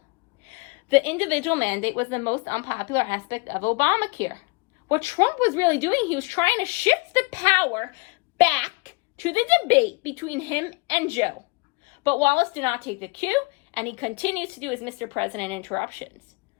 The individual mandate was the most unpopular aspect of Obamacare. What Trump was really doing, he was trying to shift the power back to the debate between him and Joe. But Wallace did not take the cue, and he continues to do his Mr. President interruptions.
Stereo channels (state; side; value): quieter; right; 28.3 dB